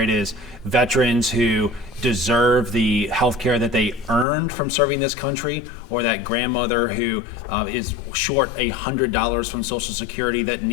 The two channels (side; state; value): right; drops out; at 4.2 s